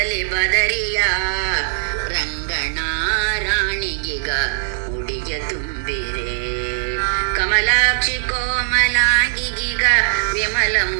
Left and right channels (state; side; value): silent; left; digital silence